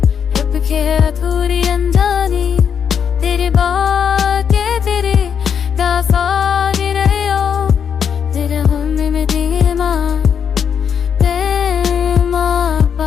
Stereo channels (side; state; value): right; quieter; 7.5 dB